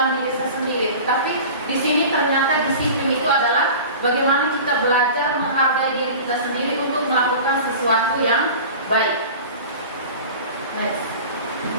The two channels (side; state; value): both; inverted; correlation -0.37